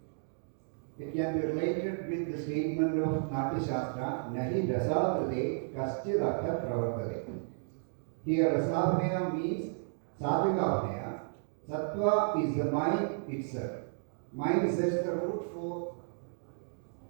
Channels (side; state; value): left; silent; digital silence